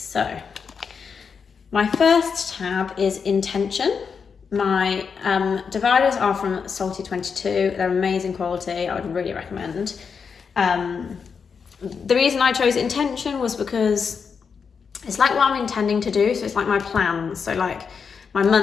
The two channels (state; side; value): quieter; right; 6.0 dB